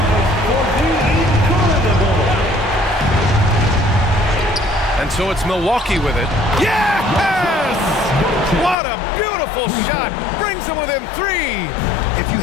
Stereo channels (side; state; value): right; drops out; at 8.8 s